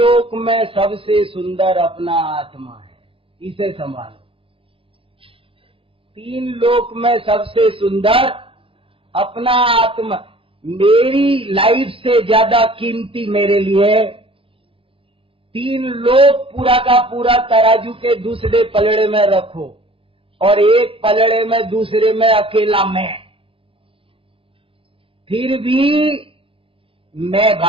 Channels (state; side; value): late; left; 0.26 ms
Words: में सबसे सुंदर अपना आत्मा है, इसे संभालो। 3 लोक में सबसे सुंदर अपना आत्मा, मेरी लाइफ से ज्यादा कीमती मेरे लिए 3 लोक पूरा का पूरा तराजू के दूसरे पलड़े में रखो और एक पलड़े में दूसरे में अकेला मैं, फिर भी मैं